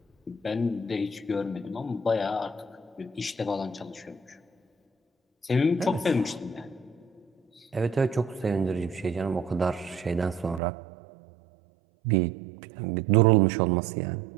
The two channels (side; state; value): left; drops out; at 10.6 s